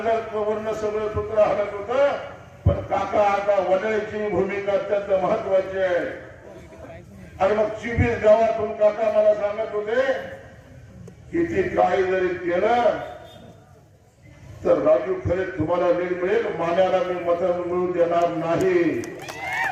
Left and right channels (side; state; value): both; identical; correlation 1.00